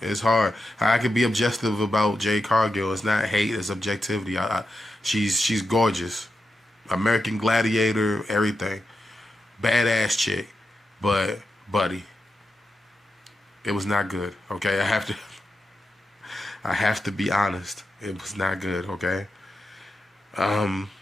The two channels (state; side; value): normal; both; correlation 0.88